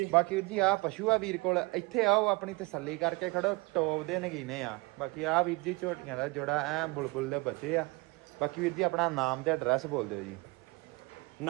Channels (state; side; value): quieter; left; 25.5 dB